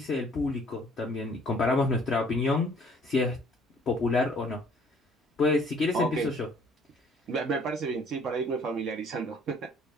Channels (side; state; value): both; normal; correlation 0.58